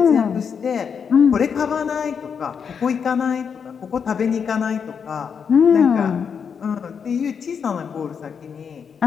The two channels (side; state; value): right; quieter; 6.7 dB